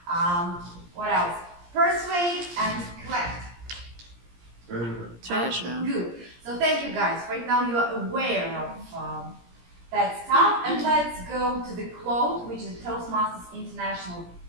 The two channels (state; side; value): late; left; 17 ms